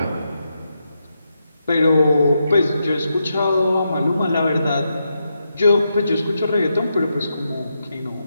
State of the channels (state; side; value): inverted; both; correlation -0.84